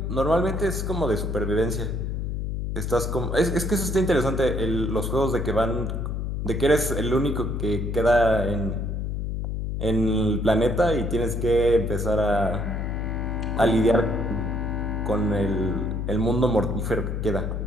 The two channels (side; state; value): left; noise; hum, 2 dB below the sound